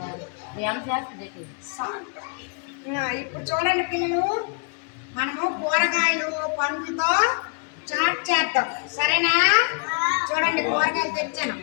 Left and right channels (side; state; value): right; quieter; 37.0 dB